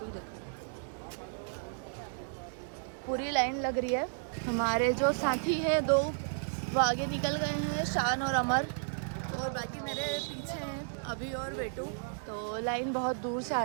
हूँ। देखो पूरी लाइन लग रही है। हमारे जो साथी हैं दो वो आगे निकल गए हैं, शान और अमर, और बाकी मेरे पीछे हैं अभी और बेटू। तो लाइन बहुत दूर से आ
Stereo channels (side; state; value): left; silent; digital silence